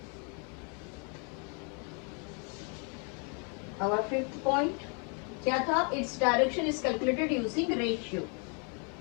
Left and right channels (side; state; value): right; quieter; 37.6 dB